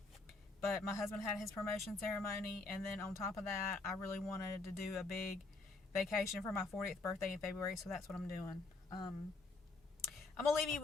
But my husband had his promotion ceremony, and then on top of that, I really wanted to do a big vacation for my 40th birthday in February, so that's what I'm doing. I'm going to leave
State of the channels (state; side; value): quieter; right; 3.5 dB